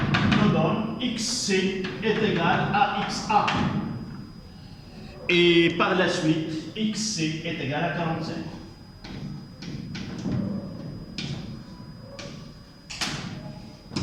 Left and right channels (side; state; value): both; identical; correlation 1.00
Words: nous donne XC est égal à XA. Et par la suite, XC est égal à 45.